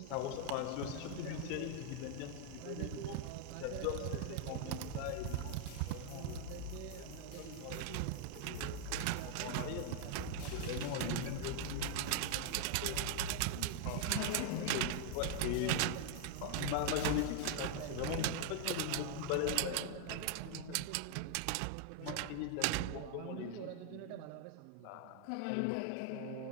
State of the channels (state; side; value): different; both; correlation 0.00